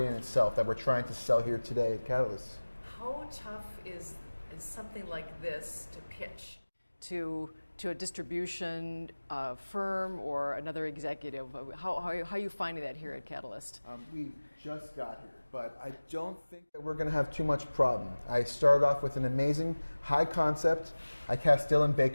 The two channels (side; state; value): both; inverted; correlation -1.00